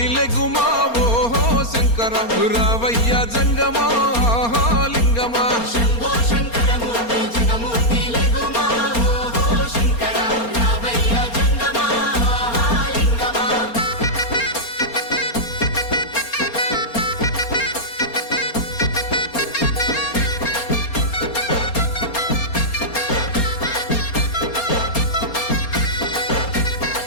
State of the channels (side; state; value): right; late; 4.3 ms